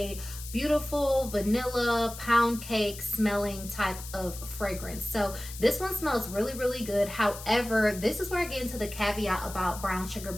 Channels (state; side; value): noise; left; hiss, 12 dB below the sound